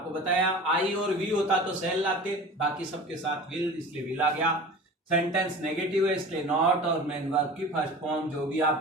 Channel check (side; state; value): both; normal; correlation 0.38